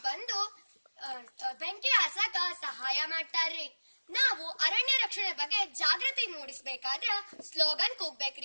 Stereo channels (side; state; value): both; inverted; correlation -1.00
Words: ಬಂದು ಬೆಂಕಿ ಹಸಾಕ ಸಹಾಯ ಮಾಡ್ತಾರ್ರಿ. ನಾವು ಅರಣ್ಯ ರಕ್ಷಣೆ ಬಗ್ಗೆ ಜಾಗೃತಿ ಮೂಡಿಸ್ಬೇಕಾದ್ರ ಸ್ಲೋಗನ್